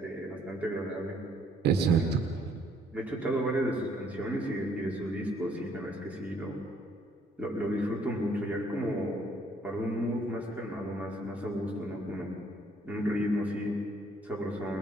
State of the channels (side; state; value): both; normal; correlation 0.65